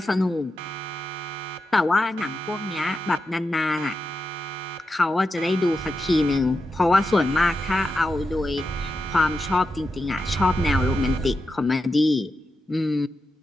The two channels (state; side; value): normal; both; correlation 0.88